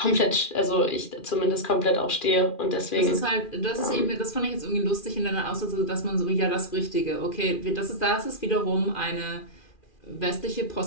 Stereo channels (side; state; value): right; late; 2.4 ms